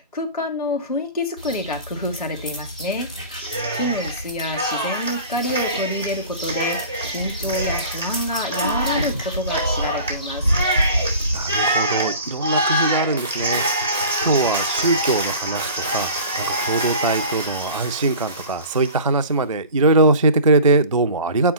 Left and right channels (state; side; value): inverted; both; correlation -0.40